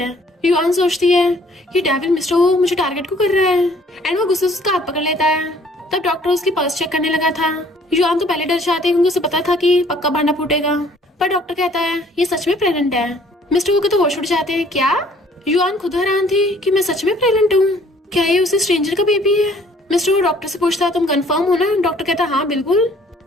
युआन सोचती है, ये डेविल मिस्टर वो मुझे टारगेट क्यों कर रहा है, एंड वो गुस्से से उसका हाथ पकड़ लेता है। तब डॉक्टर उसकी पल्स चेक करने लगा था। युआन तो पहले डर जाती है क्योंकि उसे पता था कि पक्का भांडा फूटेगा, पर डॉक्टर कहता है, ये सच में प्रेग्नेंट है। मिस्टर वो के तो होश उड़ जाते हैं, क्या। युआन खुद हैरान थी कि मैं सच में प्रेग्नेंट हूँ, क्या ये उसी स्ट्रेंजर का बेबी है। मिस्टर वो डॉक्टर से पूछता है, तुम कंफर्म हो ना। डॉक्टर कहता है, हाँ बिल्कुल।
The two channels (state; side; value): normal; both; correlation 0.58